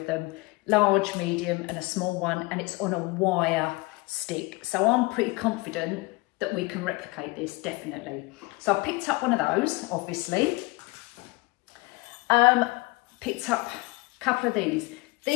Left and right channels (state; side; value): quieter; right; 23.8 dB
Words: them. Large, medium and a small one, and it's on a wire stick. So I'm pretty confident that we can replicate this, definitely. So I picked up one of those, obviously. Picked up a couple of these.